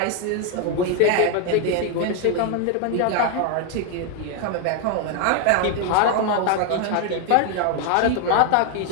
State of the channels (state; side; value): different; both; correlation 0.01